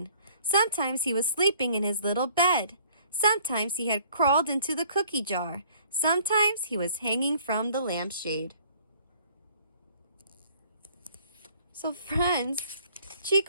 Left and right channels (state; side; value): inverted; both; correlation -0.57